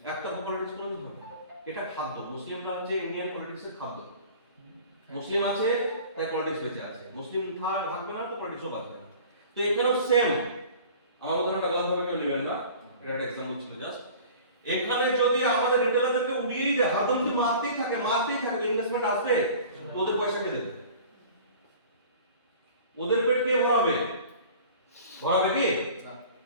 একটা পলিটিক্স কোনোদিন হবে না। এটা খাদ্য, মুসলিমরা হচ্ছে ইন্ডিয়ান পলিটিক্সের খাদ্য। মুসলিম আছে তাই পলিটিক্স বেঁচে আছে, মুসলিম থাকবে না তো পলিটিক্সও বাঁচবে না। তো এখানেও সেম, আমার উদাহরণটা গলতভাবে কেউ নেবেন না, এটা একটা এক্সাম্পল ছিল জাস্ট। এখানে যদি আমাদের রিটেলারদেরকে উড়িয়েই দেয়, হাতে যদি মারতেই থাকে ইনভেস্টমেন্ট আসবে তো ওদের পয়সা কে দেবে? ওদের পেট কে ভরাবে? ভরাবে কি?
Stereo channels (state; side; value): inverted; both; correlation -0.44